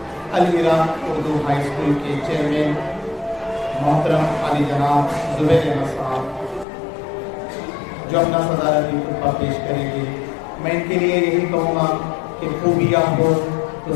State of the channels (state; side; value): drops out; right; at 6.7 s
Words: العراق اردو ہائی اسکول کے چیئرمین محترم علی جناب زبیر احمد صاحب، جو اپنا صدارتی خطبہ پیش کریں گے۔ میں ان کے لیے یہی کہوں گا کہ خوبیاں ہو تو